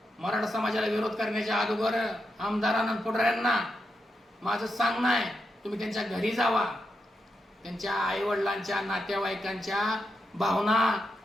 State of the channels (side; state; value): both; normal; correlation 0.85